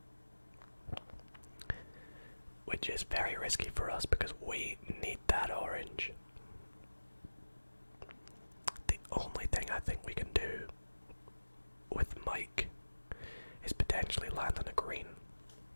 Which is very risky for us because we need that orange. The only thing I think we can do with Mike is potentially land on a green.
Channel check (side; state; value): both; inverted; correlation -1.00